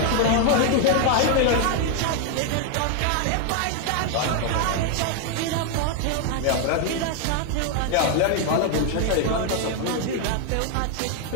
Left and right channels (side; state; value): both; different; correlation 0.00